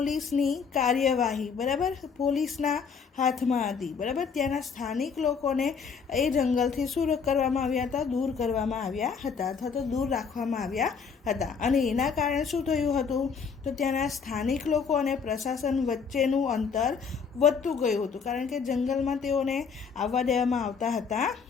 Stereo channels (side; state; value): right; quieter; 5.9 dB